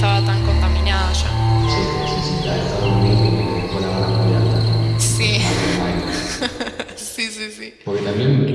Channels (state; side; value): identical; both; correlation 1.00